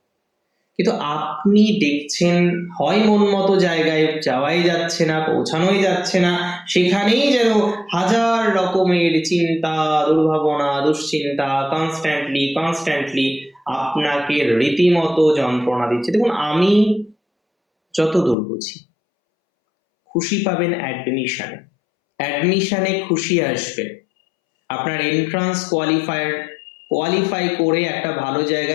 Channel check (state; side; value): drops out; right; at 18.4 s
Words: কিন্তু আপনি দেখছেন হয় মন মতো জায়গায় যাওয়াই যাচ্ছে না, পৌঁছানোই যাচ্ছে না, সেখানেই যেন হাজার রকমের চিন্তা, দুর্ভাবনা, দুশ্চিন্তা কনস্ট্যান্টলি আপনাকে রীতিমতো যন্ত্রণা দিচ্ছে। দেখুন, আমি যতদূর বুঝি, খুশি পাবেন অ্যাডমিশনে খুশি আসবে। আপনার এন্ট্রান্স কোয়ালিফাই করে একটা ভালো